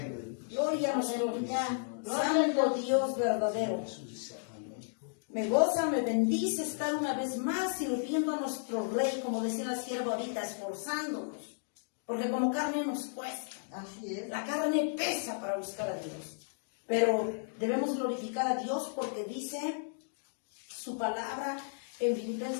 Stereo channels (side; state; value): right; silent; digital silence